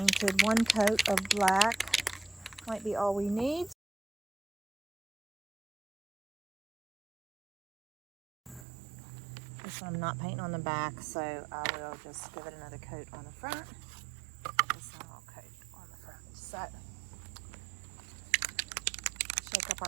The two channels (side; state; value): left; drops out; at 8.7 s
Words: One coat of black might be all we need. This one I'm not painting on the back, so I will just give it another coat on the front. This one I'll coat on the front. So, shake up